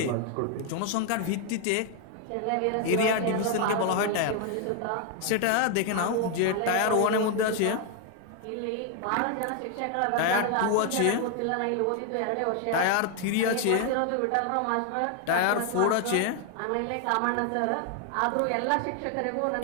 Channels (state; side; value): different; both; correlation 0.00